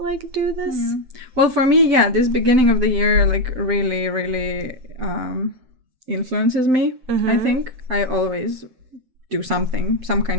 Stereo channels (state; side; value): late; left; 7.8 ms